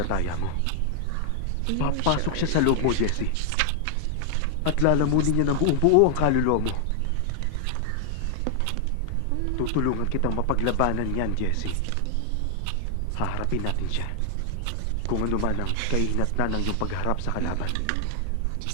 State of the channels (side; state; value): both; different; correlation 0.00